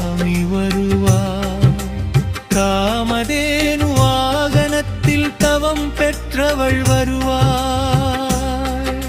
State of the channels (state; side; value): identical; both; correlation 1.00